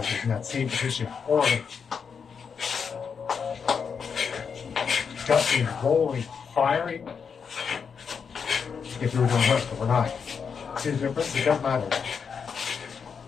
in that same position. Or ducking, rolling, firing. If we were doing this, but we're not. See the difference? It doesn't matter.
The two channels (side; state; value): right; quieter; 6.3 dB